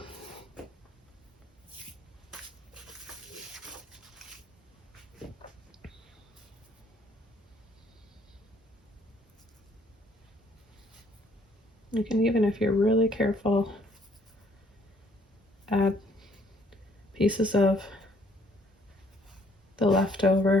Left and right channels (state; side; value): normal; both; correlation 0.63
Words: You can, even if you're really careful, add pieces of the